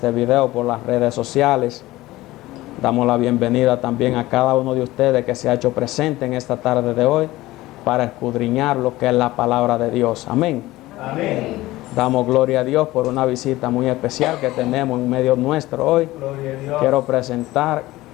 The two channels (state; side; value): quieter; right; 17.8 dB